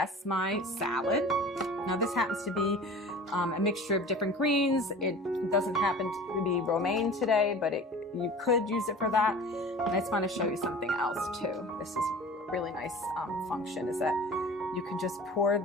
my salad. Now this happens to be a mixture of different greens. It doesn't happen to be romaine today, but you could use it for that. And I just want to show you something else too. This is a really nice function, is that you can just pour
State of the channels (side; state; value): both; normal; correlation 0.40